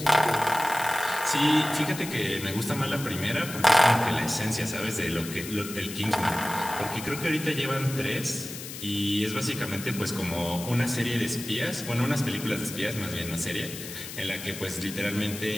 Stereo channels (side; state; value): left; noise; hiss, 10 dB below the sound